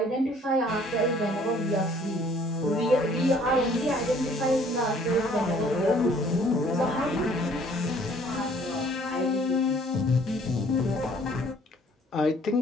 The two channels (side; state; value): both; normal; correlation 0.57